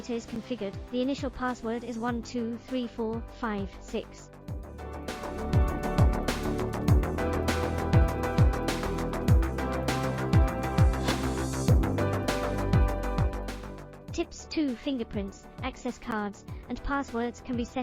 is configured, the initial password is 123456. Tips 2. Fingerprints, access cards, and passwords can be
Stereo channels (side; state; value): both; identical; correlation 1.00